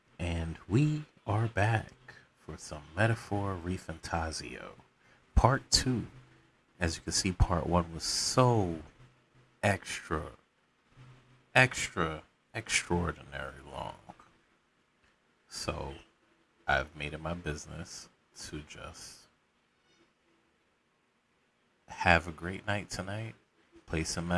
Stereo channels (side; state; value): both; identical; correlation 1.00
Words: And we are back for some Metaphor Refantazio. Part 2. As you can see, part 1 was so extra, extraordinary long. So I've made it my business to just have a great night tonight, play some